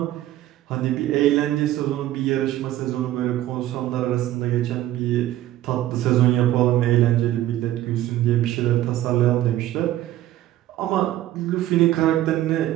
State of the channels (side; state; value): left; quieter; 14.1 dB